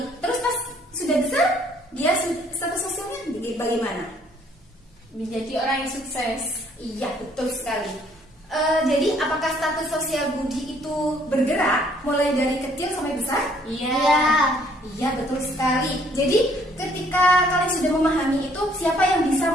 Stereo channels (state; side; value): normal; both; correlation 0.63